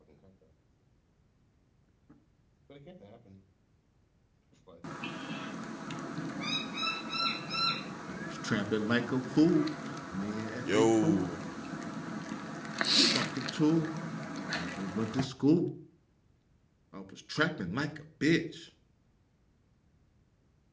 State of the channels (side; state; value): both; identical; correlation 1.00